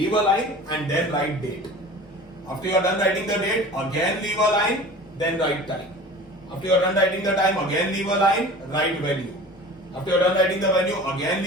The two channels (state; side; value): normal; both; correlation 0.39